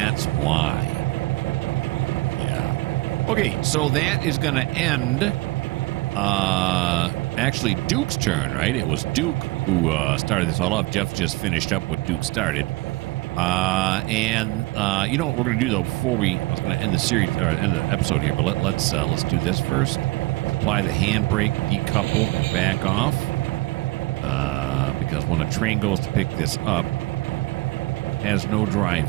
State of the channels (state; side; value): quieter; left; 21.2 dB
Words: why. Yeah. Okay, so that is going to end actually Duke's turn, right? It was Duke who started this all off. Jeff just finished up what Duke started. You know what we're going to do, though, before I was going to end the series, or end the episode here, but let's do this first. Apply the handbrake, decouple, and back off. Because when a train goes to pick this up, it has no